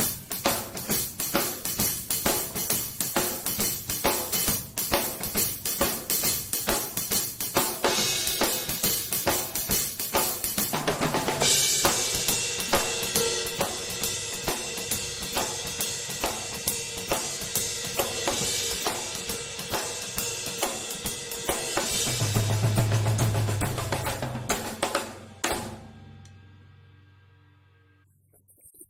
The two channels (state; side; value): identical; both; correlation 1.00